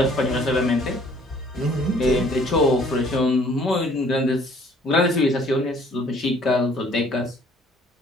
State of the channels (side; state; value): both; normal; correlation 0.58